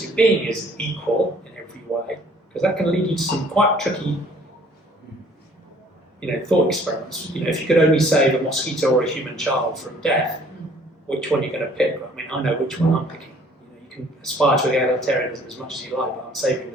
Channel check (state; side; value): normal; both; correlation 0.57